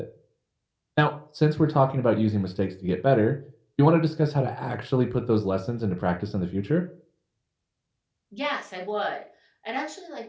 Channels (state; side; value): identical; both; correlation 1.00